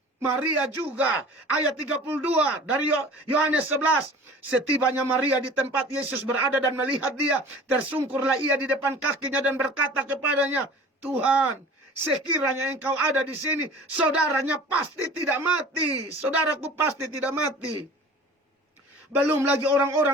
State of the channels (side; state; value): both; normal; correlation 0.43